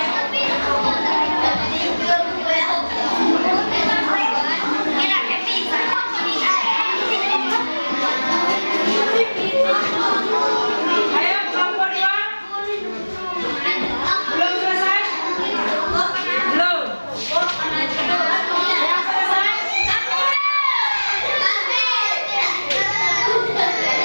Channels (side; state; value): both; inverted; correlation -1.00